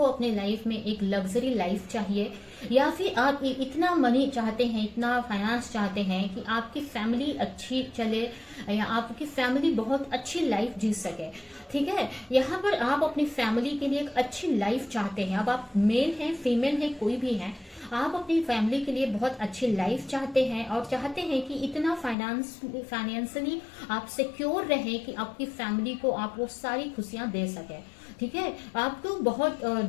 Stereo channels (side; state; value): right; drops out; at 22.2 s